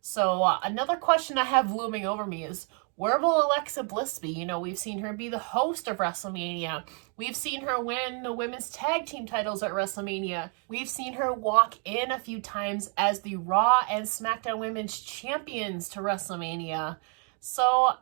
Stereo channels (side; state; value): left; quieter; 39.6 dB